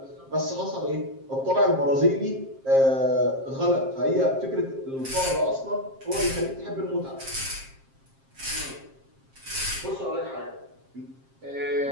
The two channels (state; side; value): late; left; 7.5 ms